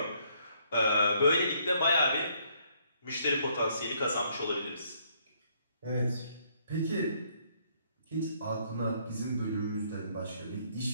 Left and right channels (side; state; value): both; inverted; correlation -0.68